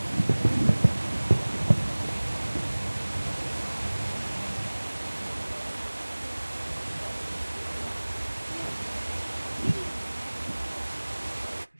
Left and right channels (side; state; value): both; inverted; correlation -1.00